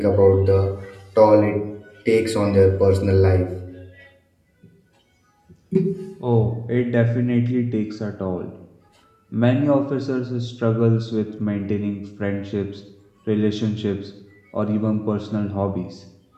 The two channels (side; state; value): both; identical; correlation 1.00